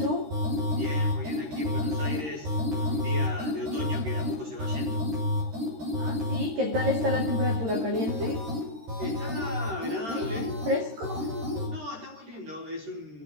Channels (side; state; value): left; late; 13 ms